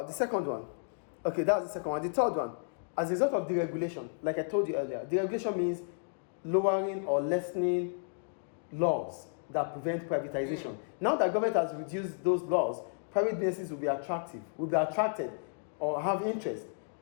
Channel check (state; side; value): silent; right; digital silence